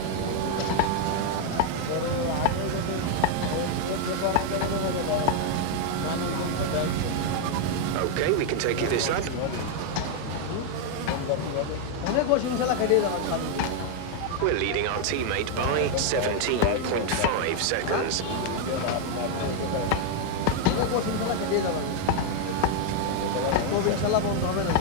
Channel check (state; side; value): different; both; correlation 0.00